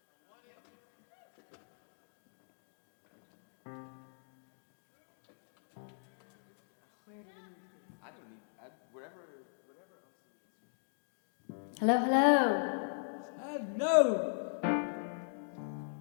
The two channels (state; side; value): silent; right; digital silence